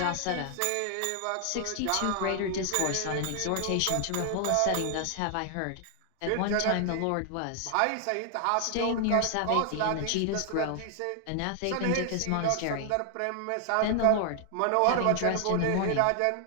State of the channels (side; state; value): both; different; correlation 0.00